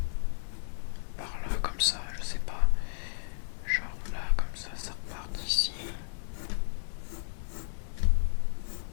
par là, comme ça, je sais pas. Genre là, comme ça repart d'ici.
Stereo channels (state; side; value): silent; right; digital silence